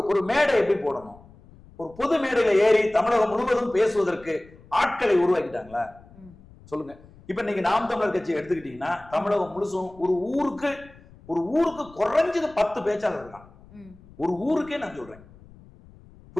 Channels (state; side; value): noise; left; rumble, 23 dB below the sound